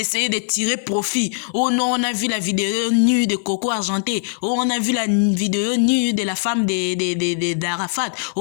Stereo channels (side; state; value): right; silent; 55 dB below the other